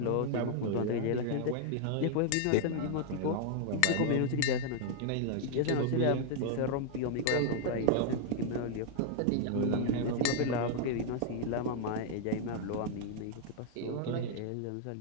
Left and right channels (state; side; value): different; both; correlation 0.00